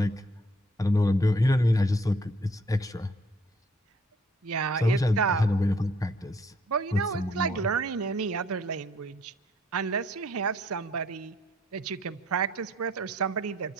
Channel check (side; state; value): both; normal; correlation 0.63